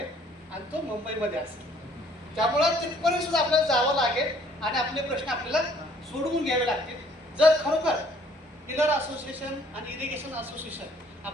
आणि तो मुंबईमध्ये असेल. त्यामुळं तिथपर्यंत सुद्धा आपल्याला जावं लागेल आणि आपले प्रश्न आपल्याला सोडवून घ्यावे लागतील. जर खरोखर पिलर असोसिएशन आणि इरिगेशन असोसिएशन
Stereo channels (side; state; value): both; normal; correlation 0.60